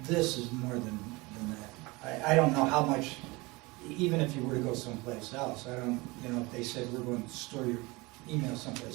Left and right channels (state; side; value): quieter; left; 24.1 dB